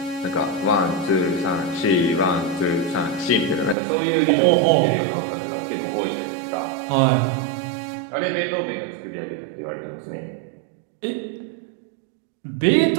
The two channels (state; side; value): drops out; left; at 3.8 s